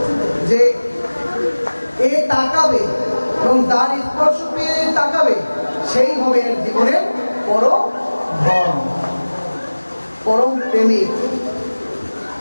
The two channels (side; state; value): both; inverted; correlation -1.00